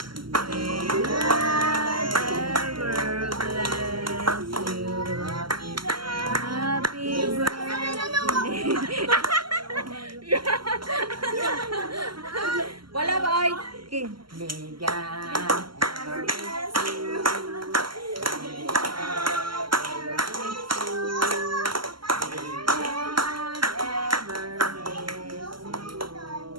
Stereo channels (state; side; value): late; left; 0.73 ms